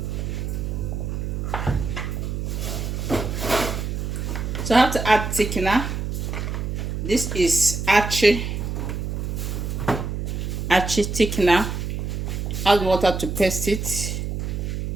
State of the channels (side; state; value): right; noise; hum, 3 dB below the sound